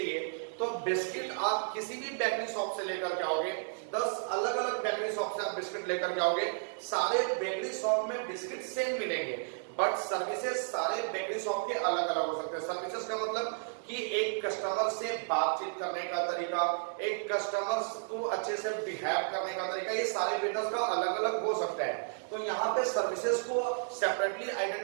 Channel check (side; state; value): left; silent; digital silence